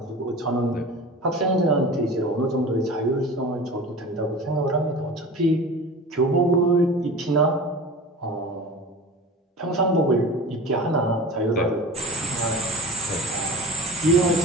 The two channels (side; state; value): both; normal; correlation 0.35